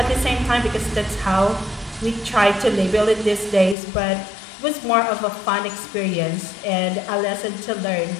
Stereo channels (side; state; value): right; drops out; at 3.8 s